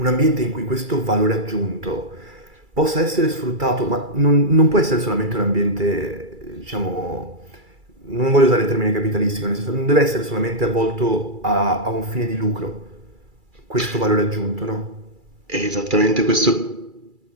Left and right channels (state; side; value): late; left; 2.3 ms